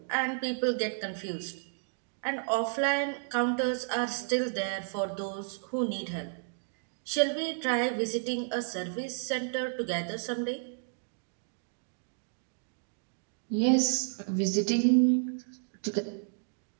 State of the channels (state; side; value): silent; left; digital silence